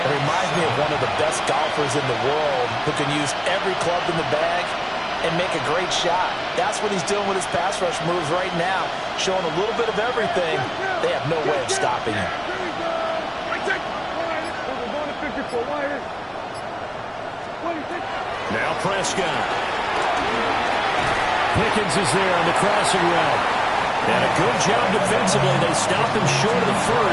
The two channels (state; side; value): identical; both; correlation 1.00